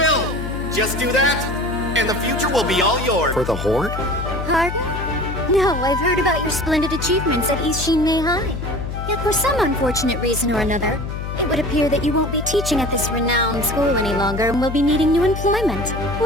Just do that, and the future will be all yours. For the Horde? Pardon? No, I've heard about your splendid achievements at East Shinmei High. Yet for some unfortunate reason or another, it would appear that you won't be teaching at this renowned school any longer and will be needing new employment.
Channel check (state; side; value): noise; left; hum, 6 dB below the sound